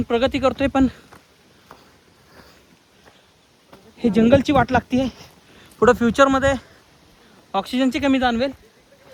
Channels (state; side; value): identical; both; correlation 1.00